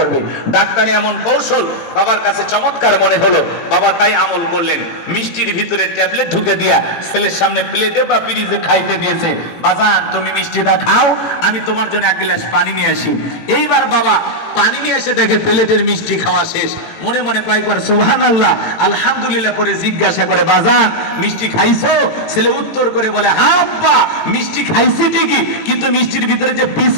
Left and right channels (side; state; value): right; late; 18 ms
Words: ডাক্তারে এমন কৌশল বাবার কাছে চমৎকার মনে হলো, বাবা তাই আমল করলেন, মিষ্টির ভিতরে ট্যাবলেট ঢুকে দিয়া ছেলের সামনে প্লেটে বা ফ্রিজে খাইতে দিয়েছে। বাজান তুমি মিষ্টিটা খাও, আমি তোমার জন্য এক গ্লাস পানি নিয়ে আসি। এইবার বাবা পানি নিয়ে এসে দেখে প্লেটের মিষ্টি খাওয়া শেষ, মনে মনে কয়েকবার সুবহানাল্লাহ আলহামদুলিল্লাহ করে জিজ্ঞাসা করে, বাজান মিষ্টি খাইছো? ছেলে উত্তর করে বলে, হ্যাঁ আব্বা মিষ্টি খাইছি ঠিকই, কিন্তু মিষ্টির ভিতরে যে